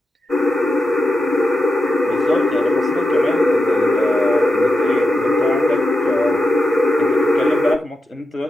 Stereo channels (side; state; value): both; normal; correlation 0.88